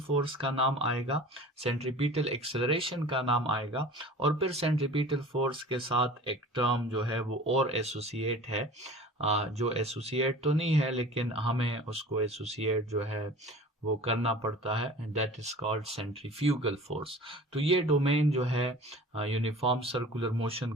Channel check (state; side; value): normal; both; correlation 0.42